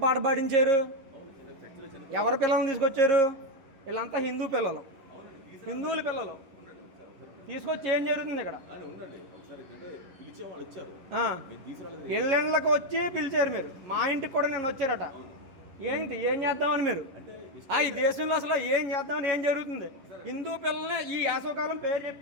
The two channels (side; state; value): left; late; 11 ms